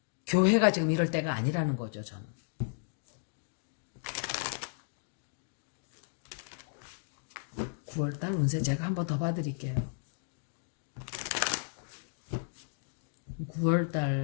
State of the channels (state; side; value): silent; right; digital silence